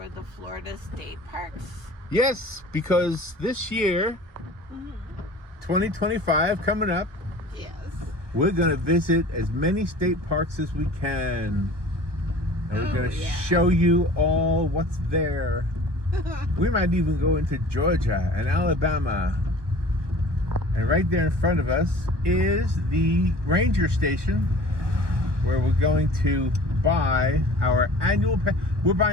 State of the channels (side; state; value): left; late; 1.2 ms